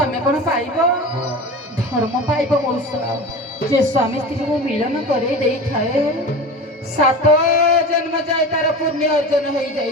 କଣ ପାଇବ? ଧର୍ମ ପାଇବ ମଉସା। ଯେ ସ୍ୱାମୀ ସ୍ତ୍ରୀକୁ ମିଳନ କରେଇ ଦେଇଥାଏ 7 ଜନ୍ମ ଯାଏ ତାର ପୁଣ୍ୟ ଅର୍ଜନ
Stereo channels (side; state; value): both; normal; correlation 0.31